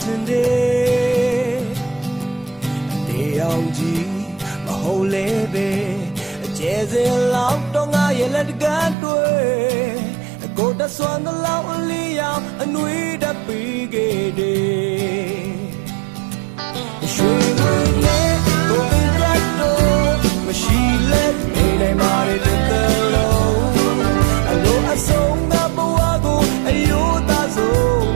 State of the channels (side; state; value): left; drops out; at 9.0 s